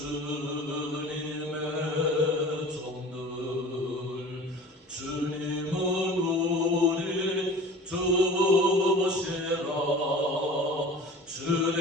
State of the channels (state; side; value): normal; both; correlation 0.41